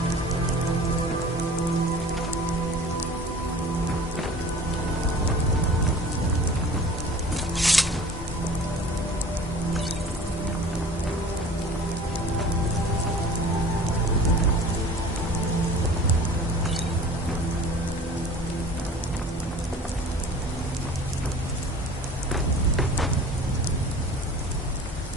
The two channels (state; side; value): normal; both; correlation 0.43